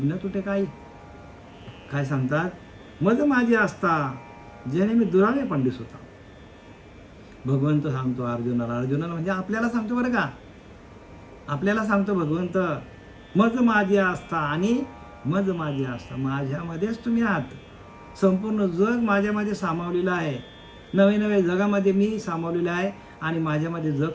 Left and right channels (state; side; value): identical; both; correlation 1.00